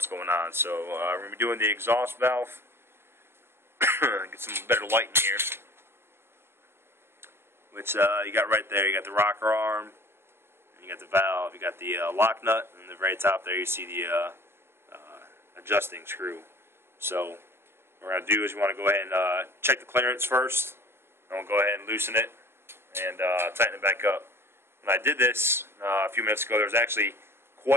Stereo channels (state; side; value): late; left; 0.12 ms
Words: going on. So, we're going to be doing the exhaust valve. Get some better light in here. Which you got right there. You got the rocker arm, and you got the valve, you got the lock nut, and at the very top there you see the adjusting screw. So what we're going to do is we want to go ahead and check the clearance first, and we'll go ahead and loosen it and tighten it back up. When I did this a few minutes ago, there was actually